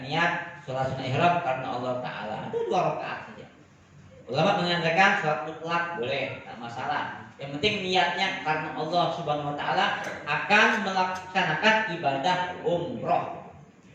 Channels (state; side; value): identical; both; correlation 1.00